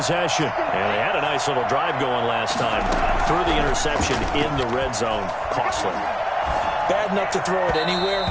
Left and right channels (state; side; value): identical; both; correlation 1.00